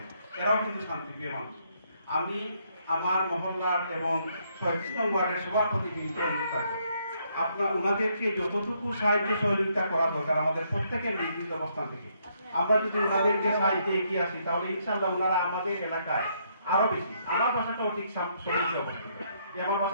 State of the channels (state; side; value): inverted; both; correlation -0.72